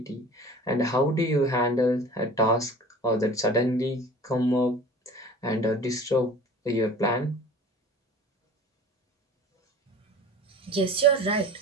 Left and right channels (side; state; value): both; normal; correlation 0.42